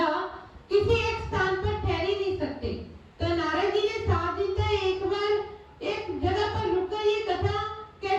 किसी एक स्थान पर ठहर ही नहीं सकते, तो नारद जी ने 7 दिन तक एक बार एक जगह पर रुककर ये कथा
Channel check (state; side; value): identical; both; correlation 1.00